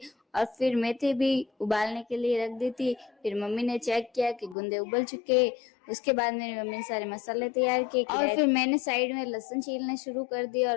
और फिर मेथी भी उबालने के लिए रख दी थी। फिर मम्मी ने चेक किया कि गुंदे उबल चुके। उसके बाद मेरी मम्मी ने सारे मसाले तैयार किए और फिर मैंने साइड में लहसुन छीलने शुरू कर दिया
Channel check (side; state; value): right; drops out; at 4.5 s